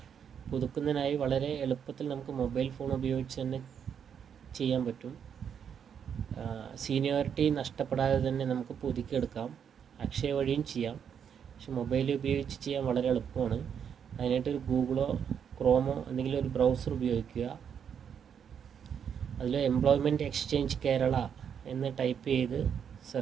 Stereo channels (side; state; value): left; quieter; 7.8 dB